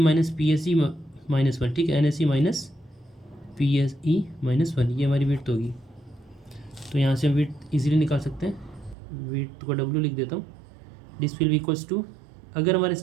PSE माइनस 1, ठीक है, NSE माइनस PSE माइनस 1, ये हमारी विड्थ होगी। तो यहाँ से हम विड्थ इजीली निकाल सकते हैं, विड्थ को W लिख देता हूँ, this will be equals to, अगर हमारा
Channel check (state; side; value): drops out; left; at 9.0 s